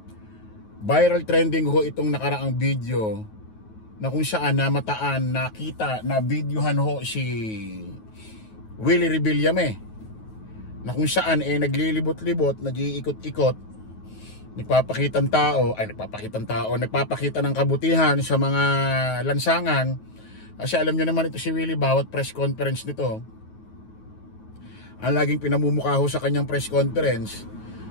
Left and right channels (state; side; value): late; right; 9.4 ms